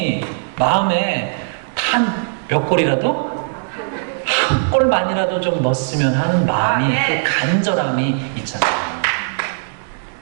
마음에 단 몇 골이라도? 한 골만이라도 좀 넣었으면 하는 마음이, 그 간절함이 있잖아요.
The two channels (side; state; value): left; silent; digital silence